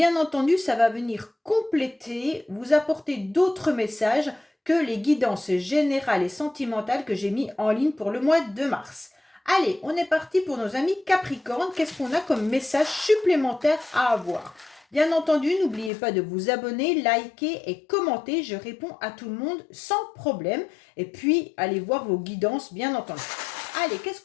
entendu, ça va venir compléter, vous apporter d'autres messages que les guidances générales et sentimentales que j'ai mis en ligne pour le mois de mars. Allez, on est parti pour nos amis Capricorne. Qu'est-ce qu'on a comme message supplémentaire à avoir ? Bien entendu, n'oubliez pas de vous abonner, liker et commenter. Je réponds à tout le monde sans problème. Et puis, allez voir vos guidances, bien entendu. Allez, qu'est-ce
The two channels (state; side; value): drops out; right; at 15.9 s